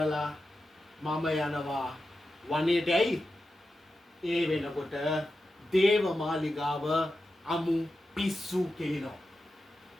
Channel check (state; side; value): normal; both; correlation 0.91